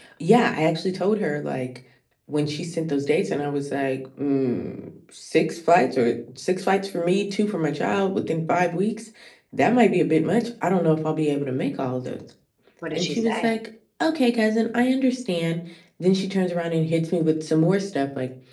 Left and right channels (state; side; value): identical; both; correlation 1.00